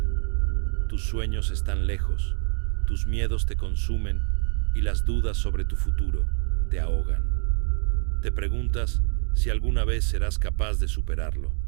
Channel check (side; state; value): left; silent; digital silence